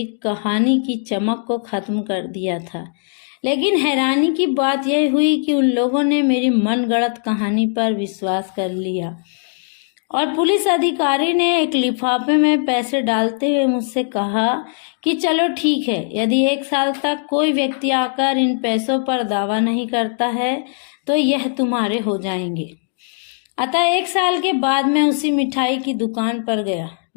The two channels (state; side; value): silent; right; digital silence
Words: कहानी की चमक को खत्म कर दिया था। लेकिन हैरानी की बात यह हुई कि उन लोगों ने मेरी मनगढ़ंत कहानी पर विश्वास कर लिया और पुलिस अधिकारी ने एक लिफाफे में पैसे डालते हुए मुझसे कहा कि चलो ठीक है, यदि 1 साल तक कोई व्यक्ति आकर इन पैसों पर दावा नहीं करता है तो यह तुम्हारे हो जाएंगे। अतः 1 साल के बाद मैं उसी मिठाई की दुकान पर गया।